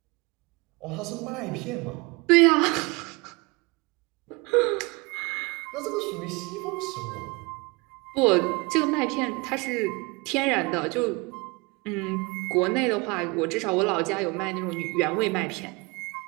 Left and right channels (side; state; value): left; quieter; 26.7 dB